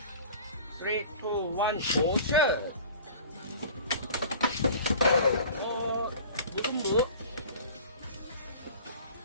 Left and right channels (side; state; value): both; inverted; correlation -0.43